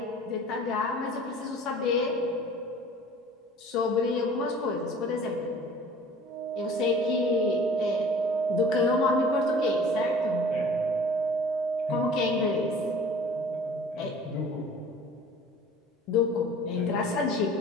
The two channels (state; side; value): normal; both; correlation 0.46